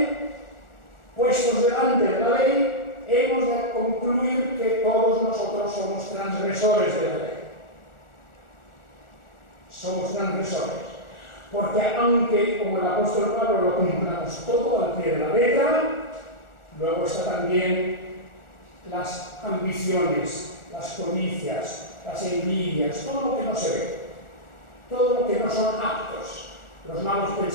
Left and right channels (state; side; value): late; right; 1.4 ms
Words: puestos delante de la ley, hemos de concluir que todos nosotros somos transgresores de la ley. Somos transgresores, porque aunque, como el apóstol Pablo, lo cumplamos todo al pie de la letra, luego está también las ambiciones, las codicias, las envidias, todo lo que no se ve, todo lo que no son actos, los malos